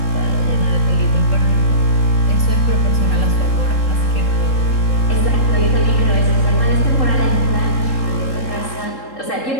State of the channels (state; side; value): late; right; 3.7 ms